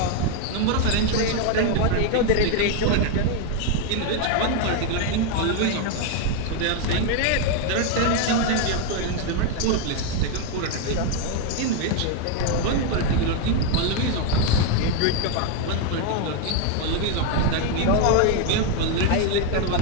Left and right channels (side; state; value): both; different; correlation 0.01